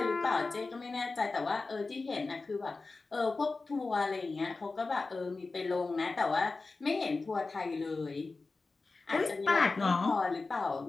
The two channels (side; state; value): right; quieter; 3.8 dB